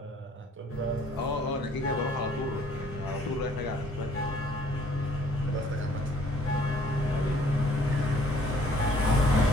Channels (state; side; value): normal; both; correlation 0.59